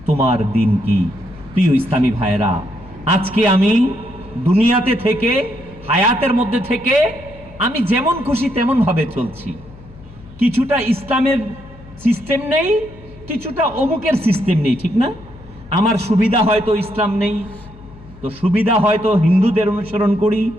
তোমার দিন কি? প্রিয় ইসলামী ভাইরা, আজকে আমি দুনিয়াতে থেকে, হায়াতের মধ্যে থেকে আমি যেমন খুশি তেমন ভাবে চলছি। কিছুটা ইসলামের সিস্টেম নেই, কিছুটা অমুকের সিস্টেম নেই, ঠিক না? আমার সুবিধা হয়তো ইসলাম নেই, তো সুবিধা হয়তো হিন্দুদের অনুসরণ করি,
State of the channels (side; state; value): left; noise; hum, 20 dB below the sound